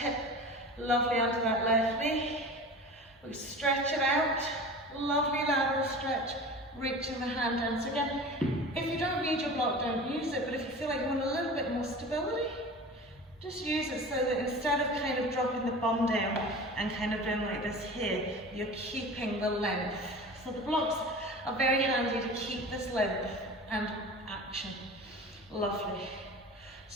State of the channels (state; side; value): normal; both; correlation 0.36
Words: lovely under that left knee. We stretch it out, lovely lateral stretch, reaching the hand down. So again, if you don't need your block, don't use it, but if you feel like you want a little bit more stability, just use it so that instead of kind of dropping the bum down and kind of doing like this here, you're keeping the length. So the blocks are very handy to keep this length and action. Lovely.